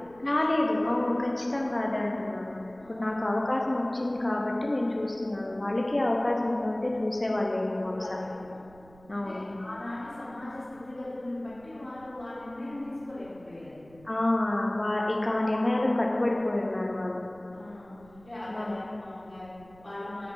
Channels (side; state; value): right; noise; rumble, 25 dB below the sound